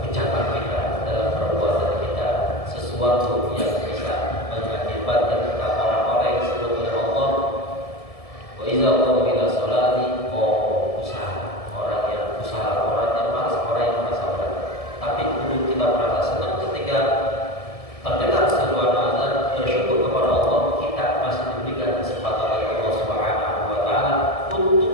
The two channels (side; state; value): right; late; 1.7 ms